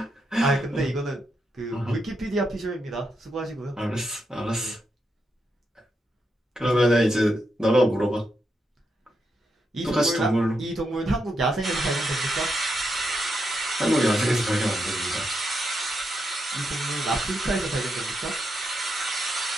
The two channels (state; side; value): normal; both; correlation 0.83